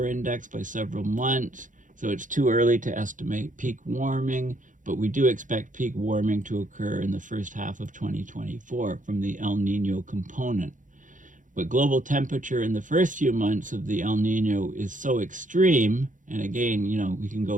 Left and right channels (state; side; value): late; left; 0.37 ms